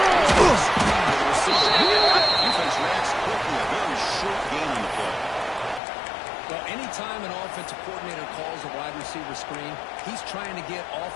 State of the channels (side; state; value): right; drops out; at 5.8 s